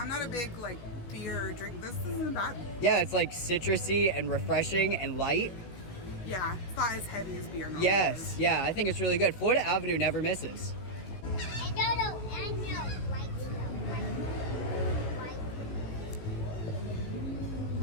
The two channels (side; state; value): right; late; 16 ms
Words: not a big beer drink. This isn't bad. Yeah, it's citrusy and refreshing and light. Yeah, it's not as heavy as beer normally Yes, is. yeah, I think it's really good. Florida Avenue never misses.